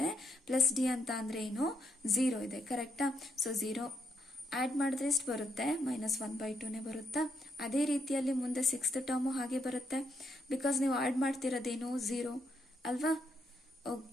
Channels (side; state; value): both; normal; correlation 0.78